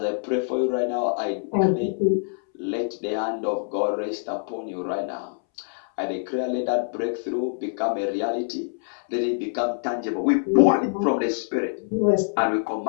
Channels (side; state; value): right; silent; 62 dB below the other